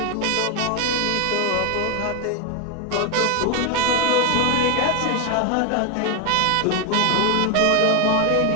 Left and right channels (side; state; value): both; different; correlation 0.01